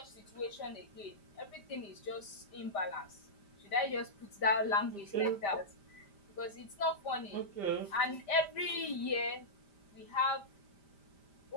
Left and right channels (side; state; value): right; late; 5.0 ms